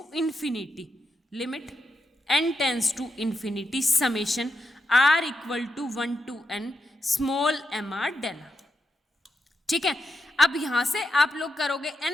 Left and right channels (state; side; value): normal; both; correlation 0.86